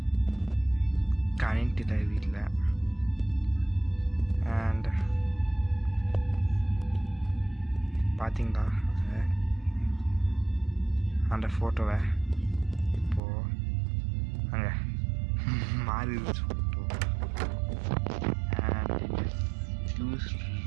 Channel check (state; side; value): drops out; left; at 13.2 s